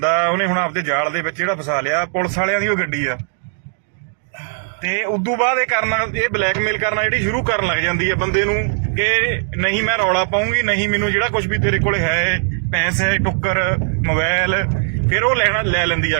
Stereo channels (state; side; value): silent; left; digital silence